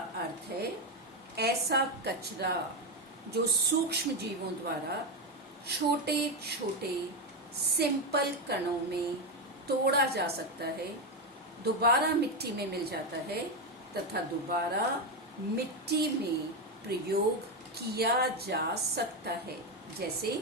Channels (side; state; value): both; normal; correlation 0.10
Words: अर्थ है ऐसा कचरा जो सूक्ष्म जीवों द्वारा छोटे छोटे सिंपल कणों में तोड़ा जा सकता है, दोबारा मिट्टी में मिल जाता है तथा दोबारा मिट्टी में प्रयोग किया जा सकता है। जैसे